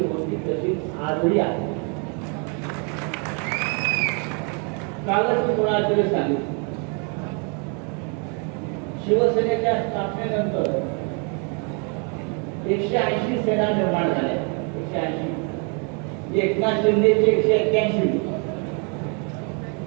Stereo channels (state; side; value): quieter; left; 37.1 dB